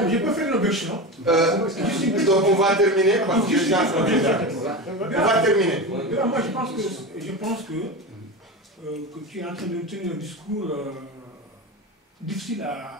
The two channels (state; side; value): normal; both; correlation 0.23